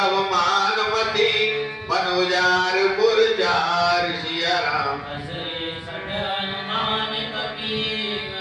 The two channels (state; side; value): identical; both; correlation 1.00